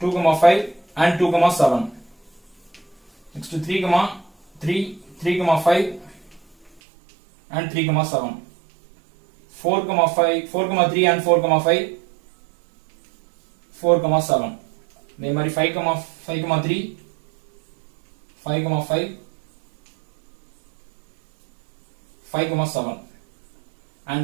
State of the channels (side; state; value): left; drops out; at 6.8 s